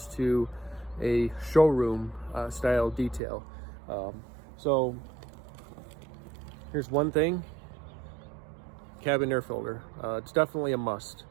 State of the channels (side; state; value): left; drops out; at 3.2 s